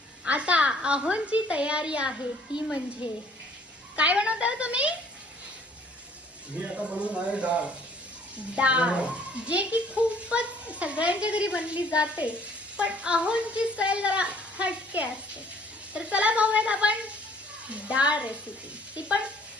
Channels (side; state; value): both; normal; correlation 0.58